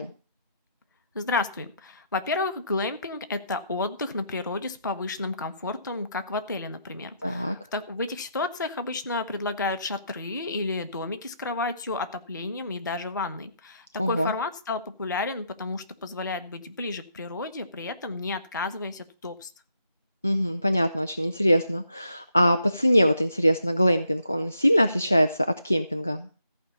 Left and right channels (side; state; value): both; inverted; correlation -0.75